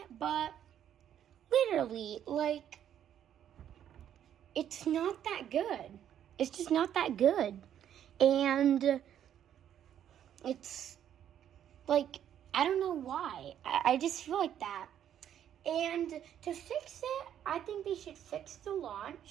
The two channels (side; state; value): left; quieter; 10.1 dB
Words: but literally, like, it's not that good. It's just not that good. And it's, like, I don't know why. I just feel like that. And to fix it, I think they should fix the